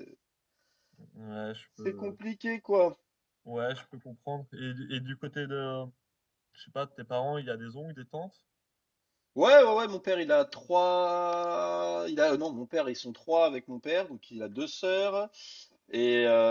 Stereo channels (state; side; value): identical; both; correlation 1.00